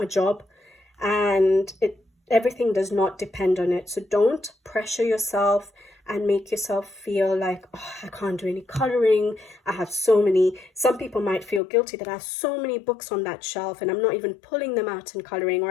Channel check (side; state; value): right; drops out; at 11.6 s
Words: a job, and everything does not depend on it. So don't pressure yourself and make yourself feel like, oh, I can't do any coloring. I have so many. Some people might feel guilty that I have so many books on that shelf and I'm not even pulling them out and coloring, or